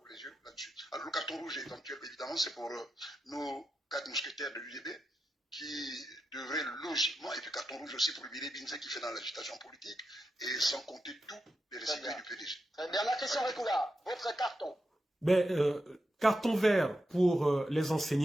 les yeux là-dessus. Alors, le carton rouge éventuel, évidemment, c'est pour nos 4 mousquetaires de l'UDB qui devraient logiquement, et puis carton rouge aussi pour le Bilé Binze qui fait dans l'agitation politique, et sans compter tous les récipients du PDG. Bernard Christian Récoula, votre carton. Carton vert pour les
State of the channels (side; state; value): both; normal; correlation 0.88